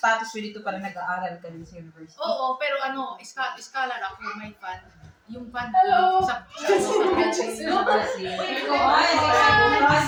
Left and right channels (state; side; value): identical; both; correlation 1.00